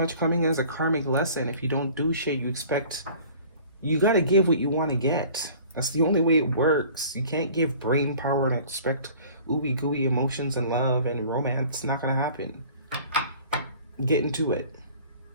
coming as a karmic lesson. If you don't do shit, you got to give what you want to get. That's the only way it works. You can't give brain power and expect ooey gooey emotions and love and romance. It's not going to happen. Get into it.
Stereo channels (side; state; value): both; inverted; correlation -0.48